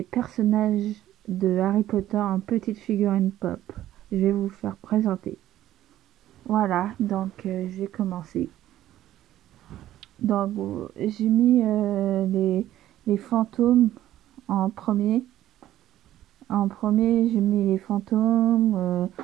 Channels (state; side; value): quieter; left; 13.3 dB